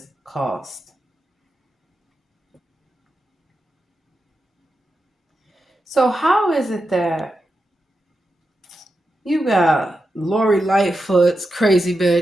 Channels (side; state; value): both; normal; correlation 0.89